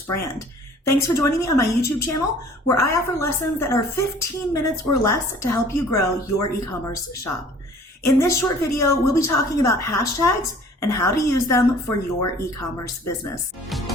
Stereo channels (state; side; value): normal; both; correlation 0.51